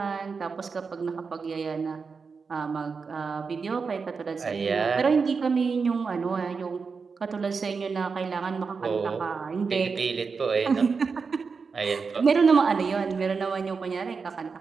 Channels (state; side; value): quieter; left; 5.1 dB